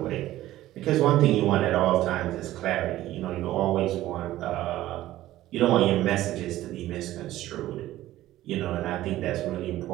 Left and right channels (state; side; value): quieter; left; 15.0 dB